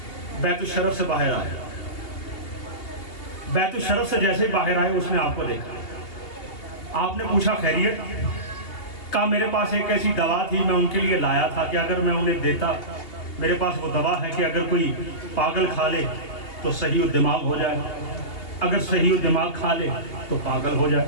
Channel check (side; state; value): right; late; 2.8 ms